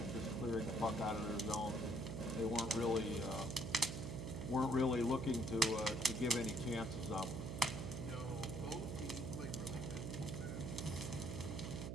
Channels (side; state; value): right; noise; hum, 4 dB below the sound